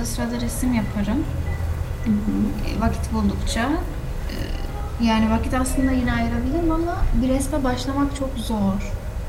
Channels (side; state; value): both; identical; correlation 1.00